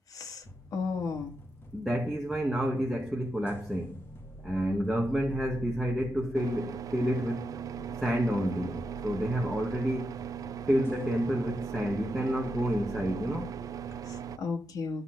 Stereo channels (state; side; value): normal; both; correlation 0.86